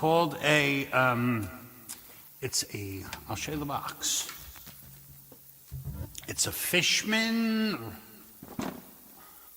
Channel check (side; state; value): both; identical; correlation 1.00